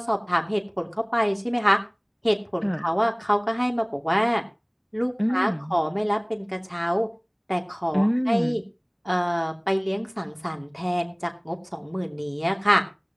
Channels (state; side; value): identical; both; correlation 1.00